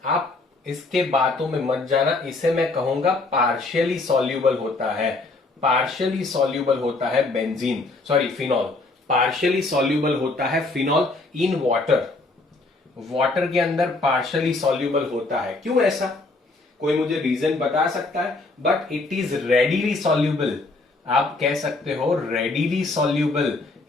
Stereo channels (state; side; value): quieter; right; 3.3 dB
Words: आप इसके बातों में मत जाना, इसे मैं कहूंगा पार्शियली सॉल्यूबल होता है। पार्शियली सॉल्यूबल होता है फिनॉल। पार्शियली सॉल्यूबल होता है फिनॉल इन वाटर। वाटर के अंदर पार्शियली सॉल्यूबल होता है। क्यों ऐसा? कोई मुझे रीजन बता सकता है? But it is readily soluble. आप कह सकते हो रेडिली सॉल्यूबल